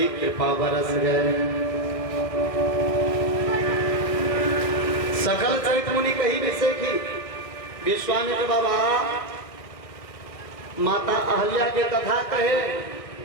कृपा बरस गए। सकल चरित मुनि कही विषय की विश्वामित्र बाबा माता अहल्या के कथा कहे,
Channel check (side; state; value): right; late; 1.5 ms